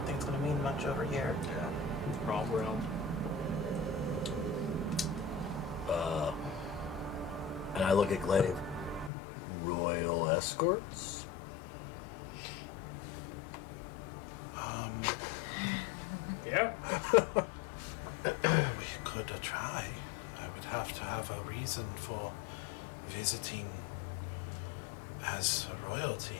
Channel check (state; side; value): drops out; right; at 9.1 s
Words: think it's going to mean much over here. Wrong realm. And I look at Glaive. Royal escorts? Yeah. I would have to have a reason for visiting as a royalty.